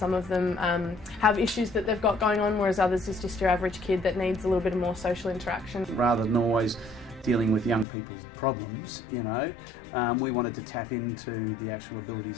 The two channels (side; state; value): right; drops out; at 7.9 s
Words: of them have issues that they've got going on, whereas others is just your average kid that needs a little bit more social interaction. Rather than always dealing with young people's problems, we wanted to tap into the actual